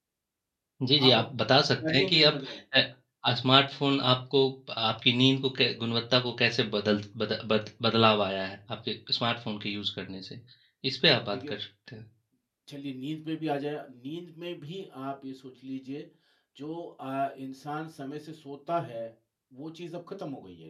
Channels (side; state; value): both; identical; correlation 1.00